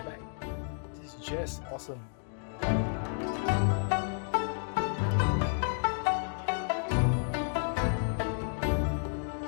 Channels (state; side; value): silent; right; 57 dB below the other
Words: back. This is just awesome.